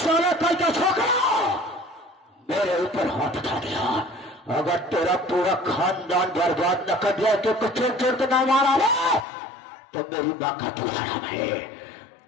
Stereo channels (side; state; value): right; drops out; at 9.2 s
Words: कल का छोकरा मेरे ऊपर हाथ उठा दिया। अगर तेरा पूरा खानदान बर्बाद न कर दिया तो कुछ चोर तो ना मारा रे, तो मेरी माँ का दूसरा है।